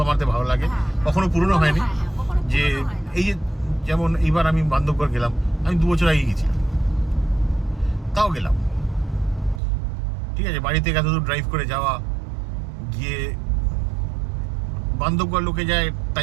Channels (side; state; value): left; drops out; at 9.6 s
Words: আমাদের ভালো লাগে, কখনো পুরনো হয়নি। যে এই যে যেমন এইবার আমি বান্ধবগড় গেলাম, আমি 2 বছর আগে গেছিলাম, তাও গেলাম, ঠিক আছে। বাড়ি থেকে এতদূর ড্রাইভ করে যাওয়া, গিয়ে বান্ধবগড় লোকে যায়